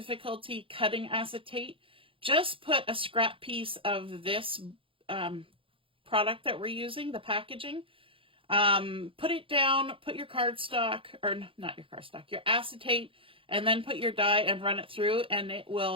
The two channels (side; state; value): left; late; 0.26 ms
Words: cutting acetate, just put a scrap piece of this product that we're using, the packaging, put it down, put your cardstock, or not your cardstock, your acetate, and then put your die and run it through, and it